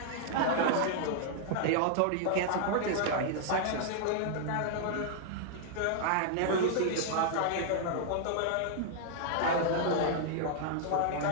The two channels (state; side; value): different; both; correlation -0.01